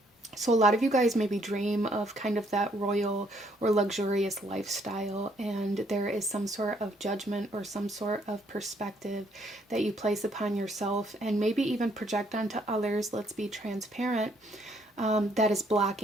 So a lot of you guys maybe dream of kind of that royal or luxurious lifestyle, and there is some sort of judgment or some sort of perspective that you place upon yourself, and maybe even project onto others, let's be transparent, that is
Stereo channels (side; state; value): both; normal; correlation 0.68